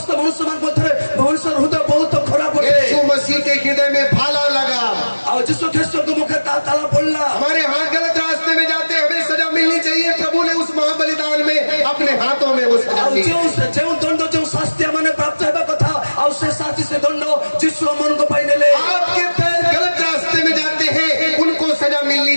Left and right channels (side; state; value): both; inverted; correlation -1.00